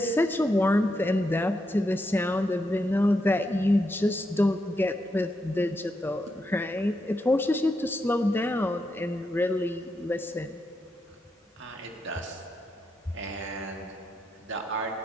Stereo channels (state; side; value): normal; both; correlation 0.83